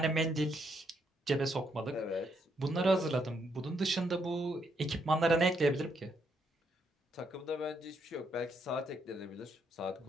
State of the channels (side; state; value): both; normal; correlation 0.75